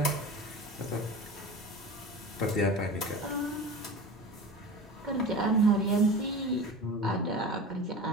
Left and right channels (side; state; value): both; normal; correlation 0.33